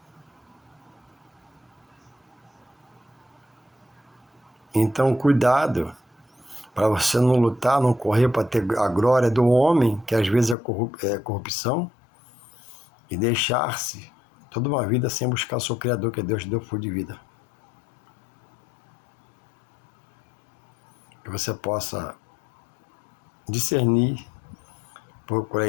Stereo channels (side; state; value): right; drops out; at 10.6 s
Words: Então, cuidado para você não lutar, não correr para ter a glória do homem, que às vezes é corrupção, e deixar-se toda uma vida sem buscar o seu Criador, que Deus deu fôlego de vida. Que você possa discernir, procurar